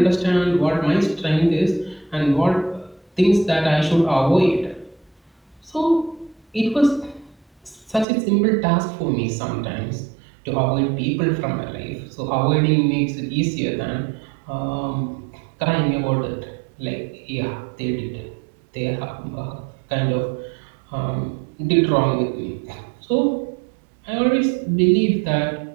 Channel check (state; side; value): drops out; left; at 8.1 s